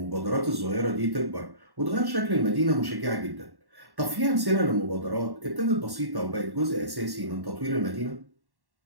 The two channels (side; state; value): left; late; 1.1 ms